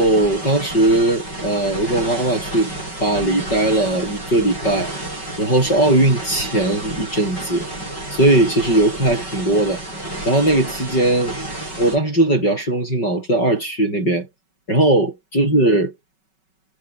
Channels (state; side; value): late; right; 5.3 ms